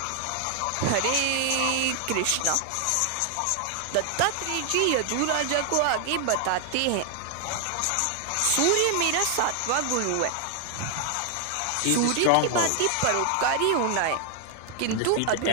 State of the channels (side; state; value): both; different; correlation 0.00